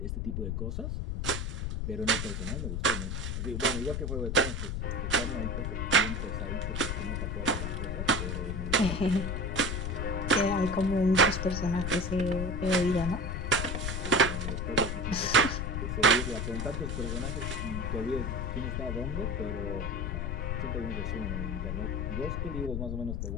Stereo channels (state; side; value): noise; left; rumble, 2 dB below the sound